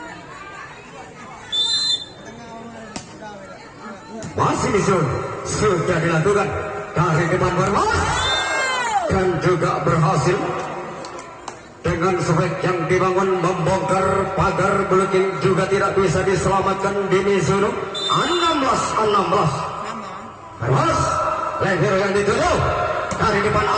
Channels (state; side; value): identical; both; correlation 1.00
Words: Masih Mizuno sudah dilakukan dari depan Brebes dan juga berhasil. Dengan sebek yang dibangun membongkar pagar blocking juga tidak bisa diselamatkan di Mizuno. 16-16. Brebes leher yang dituju dari depan